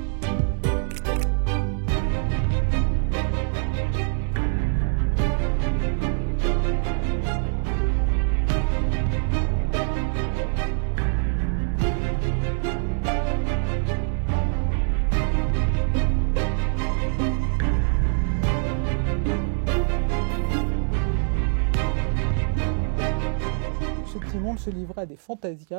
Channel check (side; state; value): left; silent; digital silence